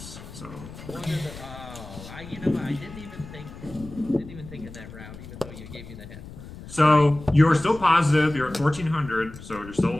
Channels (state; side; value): noise; left; rumble, 15 dB below the sound